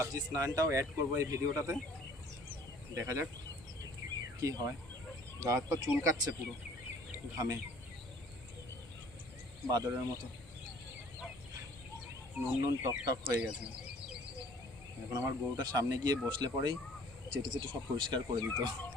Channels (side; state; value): both; normal; correlation 0.54